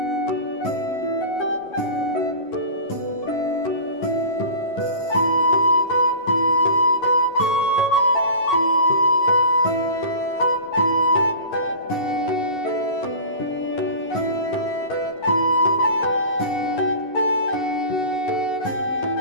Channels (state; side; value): late; right; 11 ms